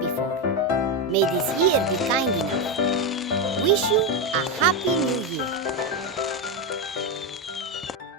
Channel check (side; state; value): both; normal; correlation 0.10